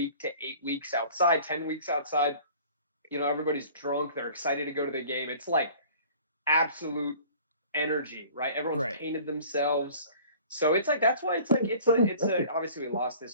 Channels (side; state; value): both; inverted; correlation -0.47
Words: to 8 weeks outside, 10 weeks outside. Everybody's drunk. They're excited to go to the game. It's like absolute energy, right? Everyone's painted themselves. So it's like, that's why it's obviously we lost